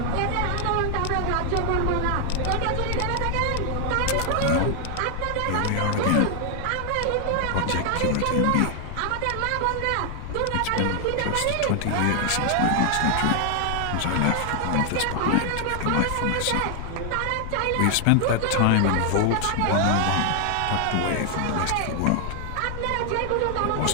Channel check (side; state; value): both; different; correlation 0.00